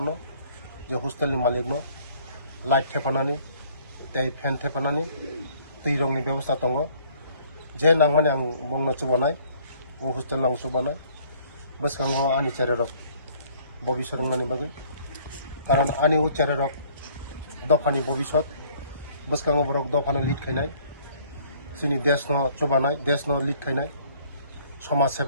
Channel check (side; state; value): both; inverted; correlation -0.59